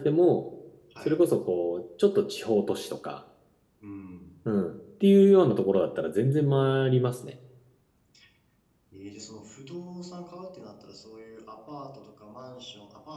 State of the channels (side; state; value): both; identical; correlation 1.00